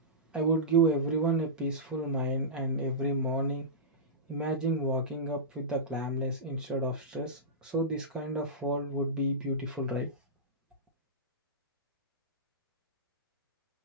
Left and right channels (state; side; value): normal; both; correlation -0.16